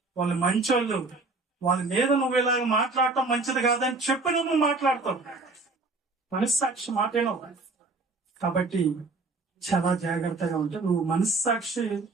వాళ్ళు మంచోళ్ళు, వాళ్ళ మీద నువ్వు ఇలాగ మాట్లాడటం మంచిది కాదని చెప్పి నువ్వు మాట్లాడతావు. మనస్సాక్షి మాటేనో. కాబట్టి చాలా జాగ్రత్తగా ఉంటే నువ్వు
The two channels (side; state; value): left; quieter; 3.5 dB